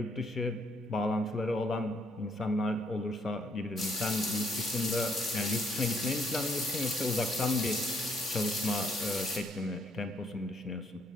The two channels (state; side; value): normal; both; correlation 0.70